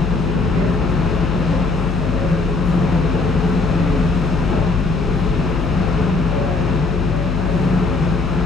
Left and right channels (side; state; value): left; noise; hum, 2 dB below the sound